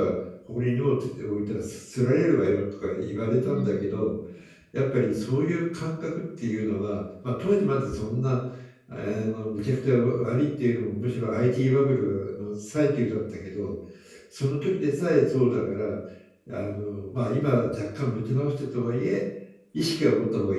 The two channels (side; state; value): both; identical; correlation 1.00